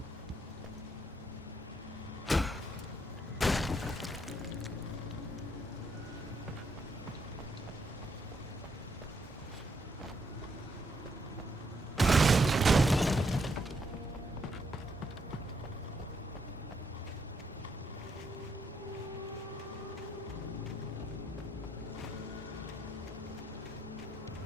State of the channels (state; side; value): normal; both; correlation 0.76